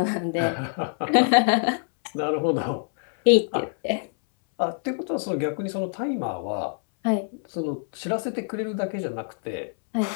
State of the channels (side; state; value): right; silent; 61 dB below the other